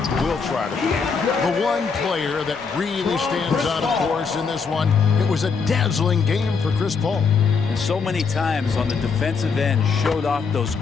will try to forget. The one player that really stands out, of course, in this one, it was a dazzling game for Chris Paul. And so many times on the defensive end, showed off those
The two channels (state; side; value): quieter; right; 5.3 dB